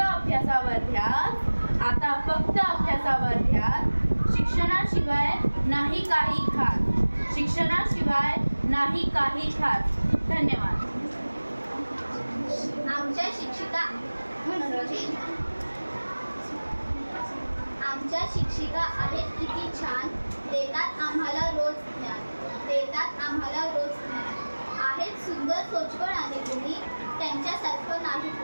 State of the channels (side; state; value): both; inverted; correlation -1.00